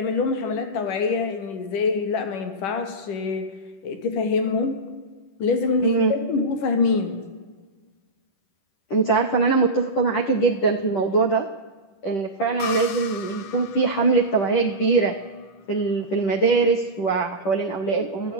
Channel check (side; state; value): right; late; 10 ms